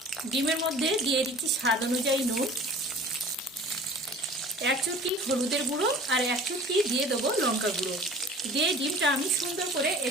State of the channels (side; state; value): both; normal; correlation 0.44